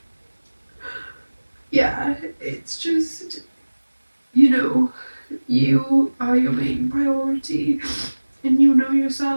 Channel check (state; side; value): inverted; both; correlation -1.00